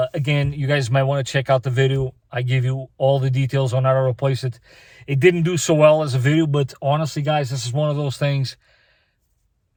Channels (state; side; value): identical; both; correlation 1.00